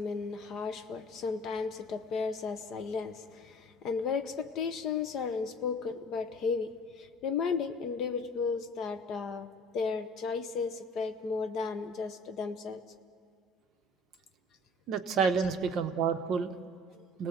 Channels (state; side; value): normal; both; correlation 0.47